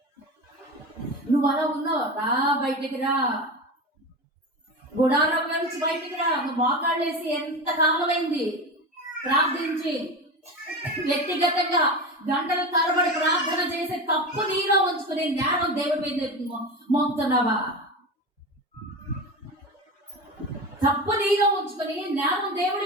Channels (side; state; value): both; normal; correlation 0.25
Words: నువ్వు అలా ఉన్నావు. రా, బయటికి రా. గుడారంలో నుంచి బయటికి రా. నువ్వు మోకాళ్ళేసి ఎంత కాలమైంది ప్రార్థించి, వ్యక్తిగతంగా గంటల తరబడి ప్రార్థన చేసే తప్పు నీలో ఉంచుకుని జ్ఞానం దేవుడి మీద మోపుతున్నావా? తప్పు నీలో ఉంచుకుని జ్ఞానం దేవుడి